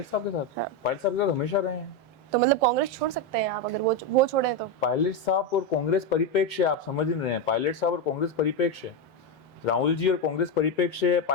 साहब के साथ? पायलट साहब के साथ हमेशा रहे हैं। तो मतलब कांग्रेस छोड़ सकते हैं आप, अगर वो छोड़े तो? पायलट साहब और कांग्रेस परिप्रेक्ष्य आप समझ नहीं रहे हैं। पायलट साहब और कांग्रेस परिप्रेक्ष्य, राहुल जी और कांग्रेस परिप्रेक्ष्य,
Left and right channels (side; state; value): both; normal; correlation 0.09